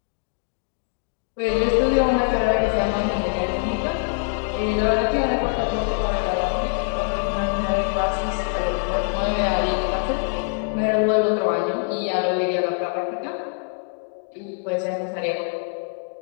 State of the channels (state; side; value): silent; right; 63 dB below the other